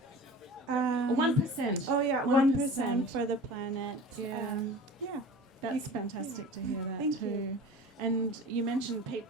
1%. Oh yeah, 1% for the planet. That's fantastic to hear that. Thank too. you. And you mentioned Pete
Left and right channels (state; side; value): normal; both; correlation 0.38